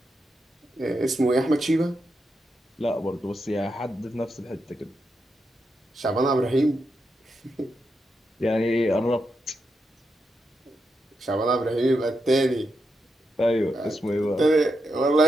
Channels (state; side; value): normal; both; correlation 0.85